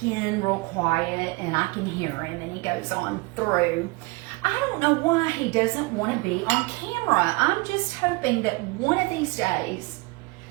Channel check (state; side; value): quieter; left; 24.6 dB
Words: in real quiet and I can hear him and he goes on through. I don't know why he doesn't want to be on camera. I'm just hoping that one of these days